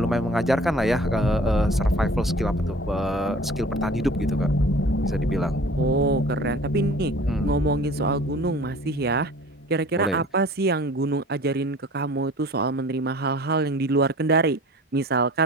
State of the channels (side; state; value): both; normal; correlation 0.45